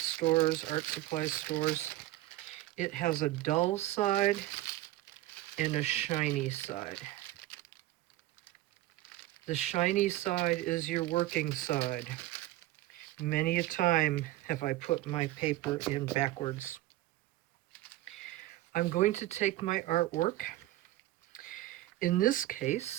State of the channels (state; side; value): quieter; left; 16.3 dB